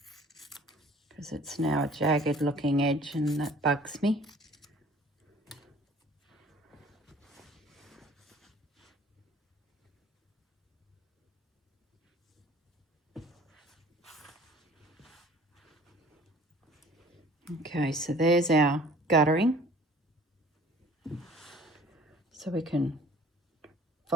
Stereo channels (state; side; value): normal; both; correlation 0.50